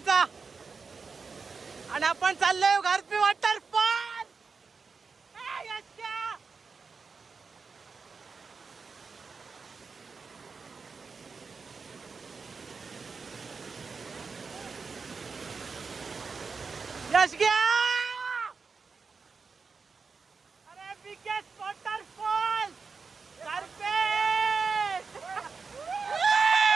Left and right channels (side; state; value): left; quieter; 4.9 dB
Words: आणि आपण चाललोय घारपी वॉटरफॉल. यश गया. अरे बिगेस्ट वॉटरफॉल घारपी.